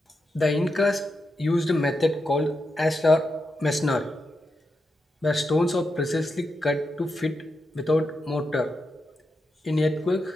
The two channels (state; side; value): normal; both; correlation 0.86